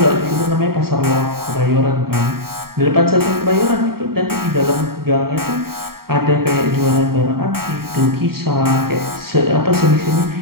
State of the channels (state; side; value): late; left; 0.94 ms